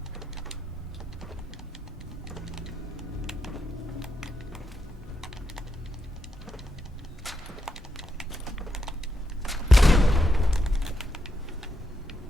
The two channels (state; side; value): normal; both; correlation 0.83